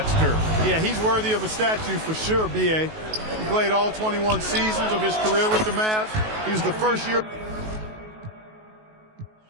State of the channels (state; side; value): late; left; 19 ms